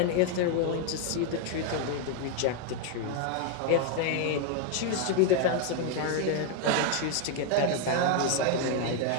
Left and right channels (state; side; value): different; both; correlation 0.00